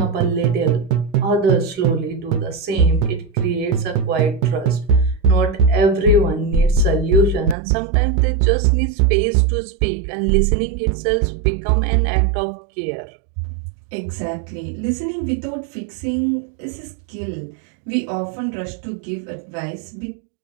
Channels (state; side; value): drops out; left; at 7.6 s